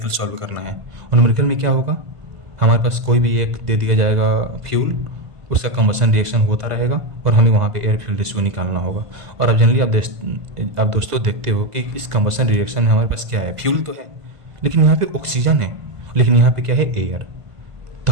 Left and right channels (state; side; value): late; left; 2.0 ms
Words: सॉल्व करना है। और न्यूमेरिकल में क्या होगा? हमारे पास कोई भी एक दे दिया जाएगा फ्यूल, उसका कंबशन रिएक्शन होता रहेगा और हमें वहाँ पे एयर फ्यूल रेशियो निकालना होगा। और अब जनरली आप दोस्तों देखते हो कि इस कंबशन रिएक्शन में हमारे पास क्या है? फ्यूल तो है, लेकिन यहाँ पे ऑक्सीजन है, लेकिन यहाँ पे क्या है? एयर। तो